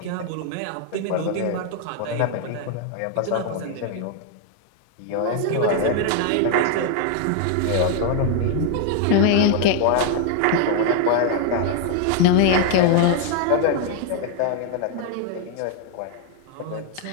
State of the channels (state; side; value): different; both; correlation 0.00